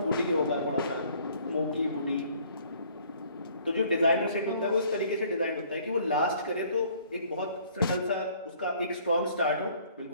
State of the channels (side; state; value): both; inverted; correlation -0.58